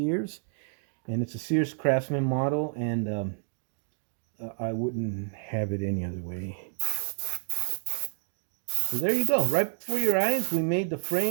And it's a Sears Craftsman model, and I wouldn't have it any other way. So there you go. Right before your eyes, we made the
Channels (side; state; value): left; silent; digital silence